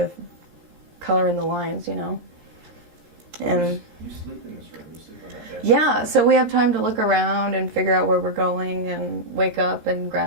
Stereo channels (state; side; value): late; left; 17 ms